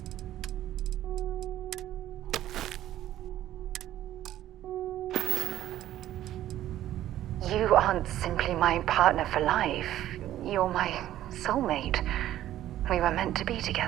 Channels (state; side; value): quieter; left; 13.0 dB